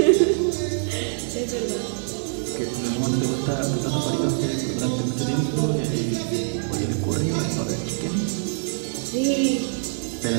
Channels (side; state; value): left; silent; 62 dB below the other